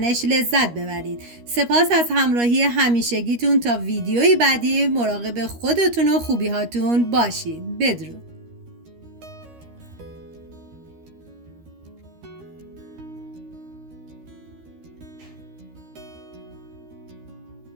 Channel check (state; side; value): late; left; 13 ms